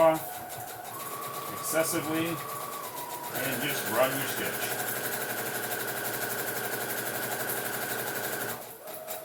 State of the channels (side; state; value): both; identical; correlation 1.00